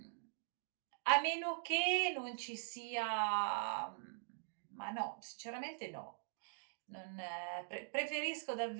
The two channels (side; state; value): left; silent; digital silence